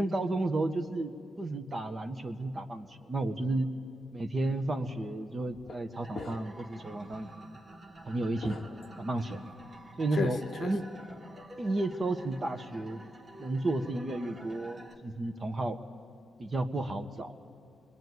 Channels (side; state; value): both; normal; correlation 0.88